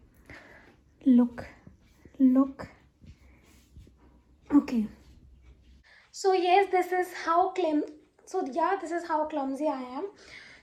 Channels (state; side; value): identical; both; correlation 1.00